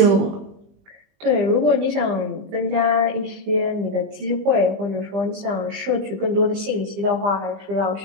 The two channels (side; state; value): left; late; 20 ms